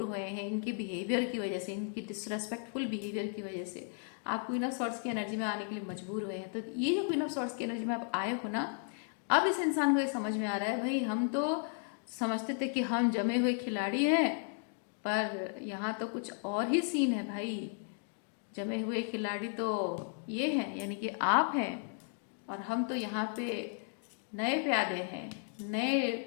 हुए हैं इनके बिहेवियर की वजह से, इनकी डिसरेस्पेक्टफुल बिहेवियर की वजह से आप क्वीन ऑफ सॉर्ड्स की एनर्जी में आने के लिए मजबूर हुए हैं। तो ये जो क्वीन ऑफ सॉर्ड्स की एनर्जी में आप आए हो ना, अब इस इंसान को ये समझ में आ रहा है, भाई हम तो समझते थे कि हम जमे हुए खिलाड़ी हैं, पर यहाँ तो कुछ और ही सीन है भाई। जमे हुए खिलाड़ी तो ये हैं, यानी कि आप हैं, और हम तो यहाँ पे नए प्यादे हैं, नए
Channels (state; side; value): silent; right; 55 dB below the other